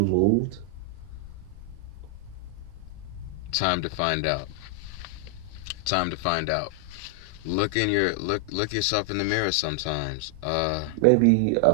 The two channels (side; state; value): both; different; correlation 0.00